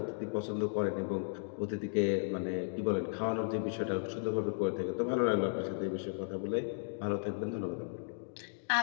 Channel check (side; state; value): right; silent; digital silence